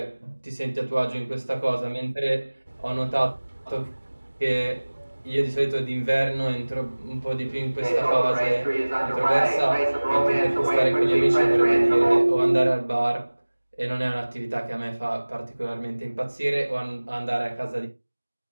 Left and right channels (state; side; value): inverted; both; correlation -1.00